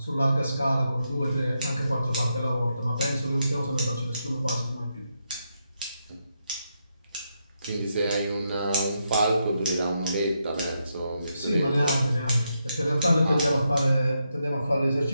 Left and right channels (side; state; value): both; inverted; correlation -0.83